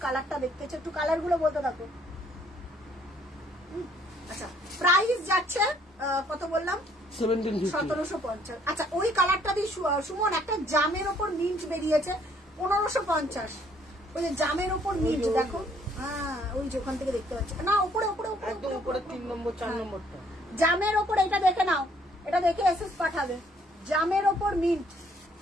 কালারটা দেখতেছে, একটু কালার গুলো বলতে থাকো। আচ্ছা প্রাইস যাচ্ছে কত বললাম, 1750। আচ্ছা ওই কালারটা দিয়ে সুমন একটা জামের ওপর মিন্ট বেরিয়েছে 1550, ওই যে জামের ওপর মিন্ট দেখো, হ্যাঁ ওই যে ওখান থেকে দেখতে পাচ্ছি না, উপরে উপরে একদম উপরে 3 নম্বর 4 নম্বরটা জামের ওপর। এটা দেখে নাও, এটা দেখে এসএস পাঠাবে, জামের ওপর মিন্ট,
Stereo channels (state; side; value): normal; both; correlation 0.64